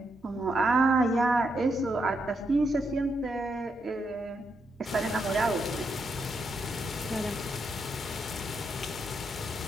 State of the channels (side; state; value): both; normal; correlation 0.81